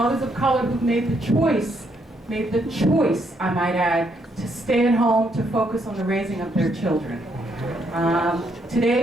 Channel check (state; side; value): normal; both; correlation 0.74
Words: of color who made the choice, I might add, to stay at home to focus on the raising of their children.